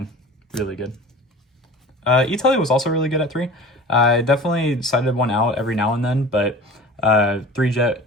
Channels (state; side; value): normal; both; correlation 0.38